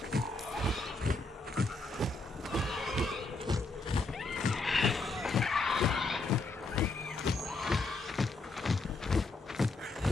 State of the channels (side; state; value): right; quieter; 3.4 dB